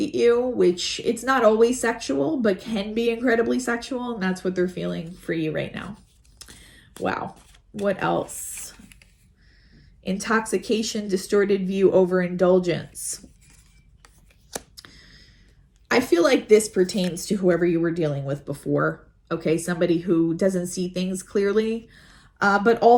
at you, which it's not always sexual, but can be incredibly sexual. And that's what they're feeling for you right now. Wow. What else? Intoxication, distorted view, overindulgence. I feel like this pertains to whoever you were dealing with before. Okay, somebody who doesn't see things clearly. But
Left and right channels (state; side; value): identical; both; correlation 1.00